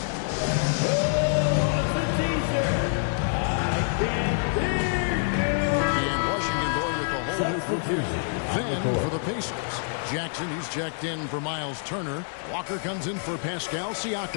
And Washington going with a whole new group here. Then for the Pacers, Jackson, he's checked in for Miles Turner. Walker comes in for Pascal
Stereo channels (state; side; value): silent; right; digital silence